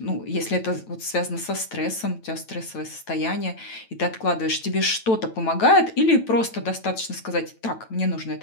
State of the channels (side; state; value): right; late; 9.0 ms